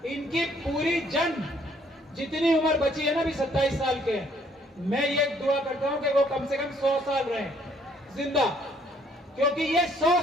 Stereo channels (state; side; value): normal; both; correlation 0.64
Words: इनकी पूरी जितनी उम्र बची है ना, अभी 27 साल के, मैं ये दुआ करता हूं कि वो कम से कम 100 साल रहे जिंदा, क्योंकि ये 100